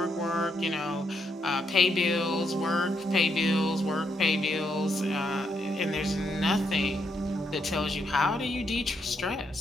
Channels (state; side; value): normal; both; correlation 0.78